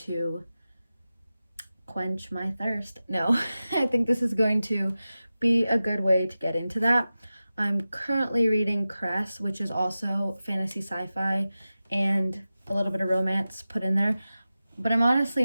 quench my thirst. No, I think this is going to be a good way to get into that. I'm currently reading Cress, which is also fantasy sci-fi and a little bit of romance put in there. But I'm honestly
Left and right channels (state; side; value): inverted; both; correlation -0.94